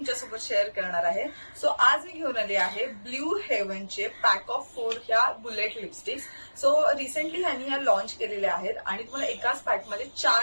शेअर करणार आहे. सो आज मी घेऊन आली आहे ब्ल्यू हेवनचे पॅक ऑफ 4 ह्या बुलेट लिपस्टिक्स. सो रिसेंटली ह्यांनी ह्या लॉन्च केलेल्या आहेत आणि तुम्हाला एकाच पॅकमध्ये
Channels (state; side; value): inverted; both; correlation -1.00